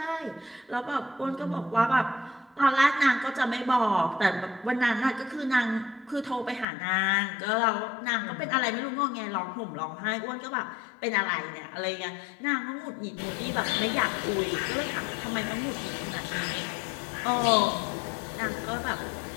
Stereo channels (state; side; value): drops out; right; at 6.7 s